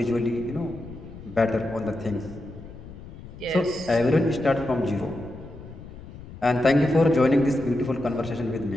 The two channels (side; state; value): left; noise; rumble, 15 dB below the sound